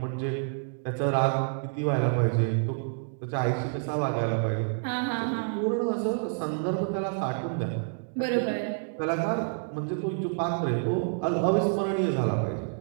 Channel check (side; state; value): left; silent; digital silence